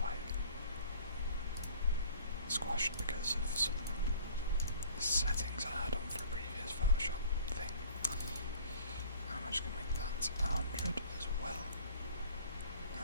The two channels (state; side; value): inverted; both; correlation -0.52